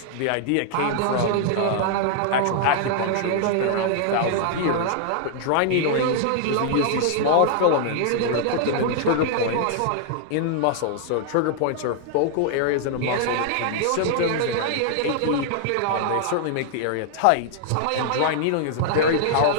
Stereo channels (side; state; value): both; different; correlation -0.01